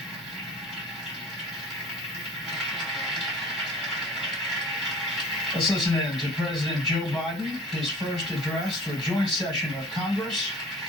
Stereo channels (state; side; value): normal; both; correlation 0.44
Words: Let's listen in to President Joe Biden, his first address to a joint session of Congress.